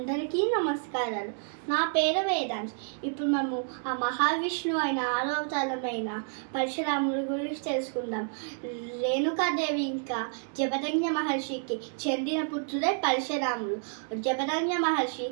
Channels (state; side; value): silent; left; 58 dB below the other